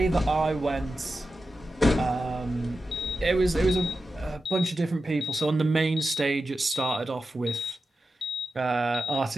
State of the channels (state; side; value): normal; both; correlation 0.92